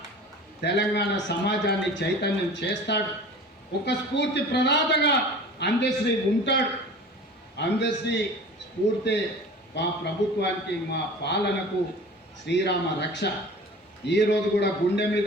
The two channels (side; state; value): both; normal; correlation 0.40